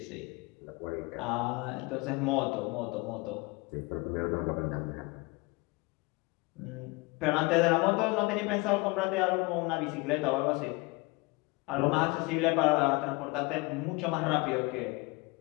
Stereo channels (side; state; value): right; quieter; 25.4 dB